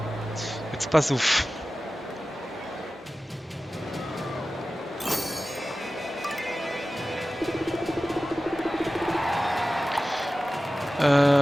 Jetzt pass auf.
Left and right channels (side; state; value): both; normal; correlation 0.95